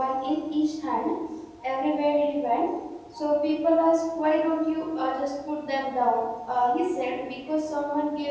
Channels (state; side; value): identical; both; correlation 1.00